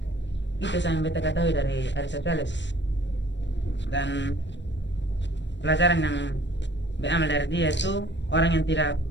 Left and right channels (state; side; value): late; right; 0.53 ms